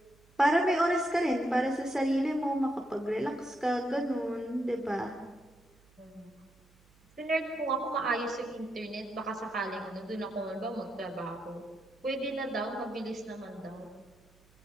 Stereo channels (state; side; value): noise; right; hum, 29 dB below the sound